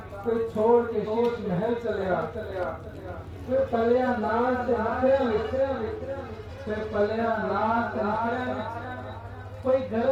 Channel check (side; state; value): both; identical; correlation 1.00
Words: کوئی چھوڑ کے شیش محل چلیا، پھر پلیا نال سے نکھرے پھر پلیا نال سے نکھرے، کوئی